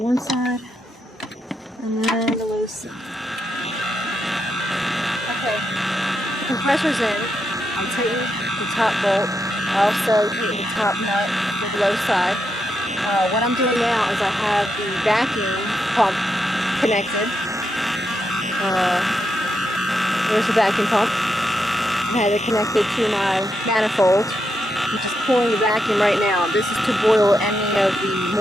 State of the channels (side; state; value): both; normal; correlation 0.83